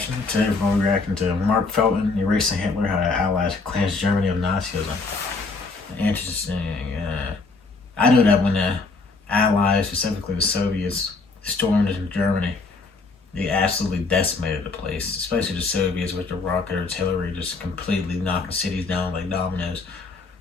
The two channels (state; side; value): quieter; right; 4.0 dB